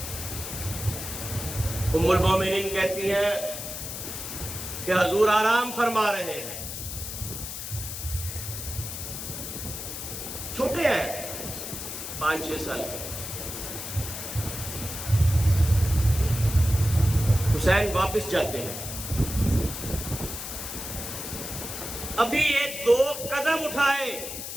ام المومنین کہتی ہیں کہ حضور آرام فرما رہے ہیں، چھوٹے ہیں 5-6 سال کے۔ حسین واپس جاتے ہیں، ابھی ایک 2 قدم اٹھائے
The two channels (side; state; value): left; noise; hiss, 7 dB below the sound